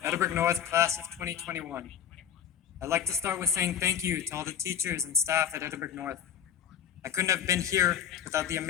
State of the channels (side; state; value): right; quieter; 8.8 dB